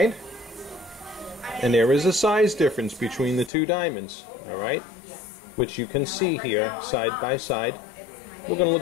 And there is a size difference between the 2 diamonds. Alright. Which you can see here side by side. We're going to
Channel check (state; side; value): drops out; right; at 3.5 s